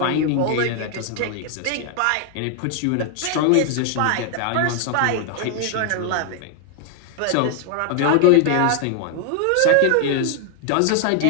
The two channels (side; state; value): both; different; correlation 0.00